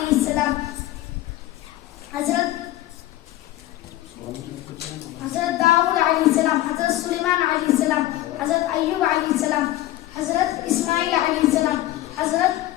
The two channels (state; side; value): quieter; right; 15.4 dB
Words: السلام, حضرت داؤد علیہ السلام, حضرت سلیمان علیہ السلام, حضرت ایوب علیہ السلام, حضرت اسماعیل علیہ السلام, حضرت